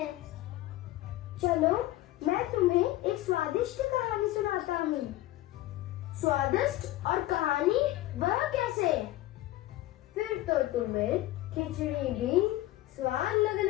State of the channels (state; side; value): quieter; right; 16.2 dB